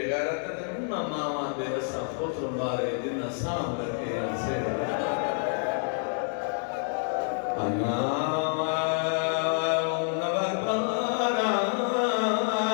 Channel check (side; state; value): right; silent; 59 dB below the other